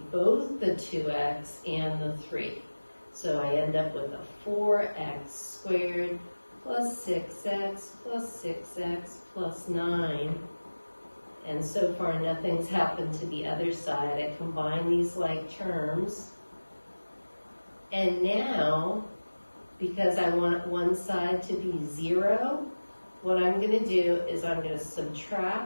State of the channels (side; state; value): both; inverted; correlation -1.00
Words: both the 2x and the 3. So I end up with a 4x squared plus 6x plus 6x plus 9. And so far nothing's happened to the other side. I combine these like terms. And now, because I want one side to be 0, what I'm going to do is I'm going to